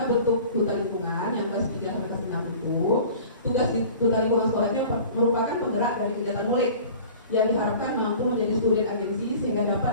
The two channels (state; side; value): inverted; both; correlation -0.44